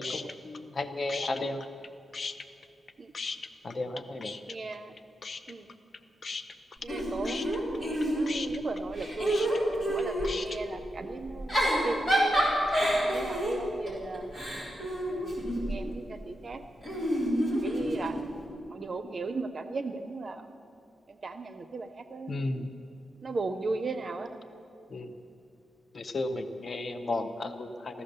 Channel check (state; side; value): normal; both; correlation 0.86